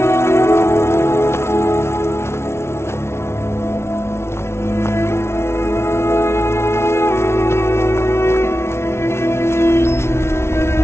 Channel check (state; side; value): late; right; 0.13 ms